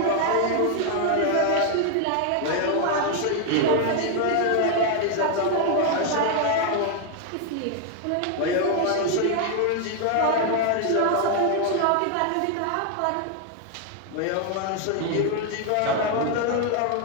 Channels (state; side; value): different; both; correlation 0.00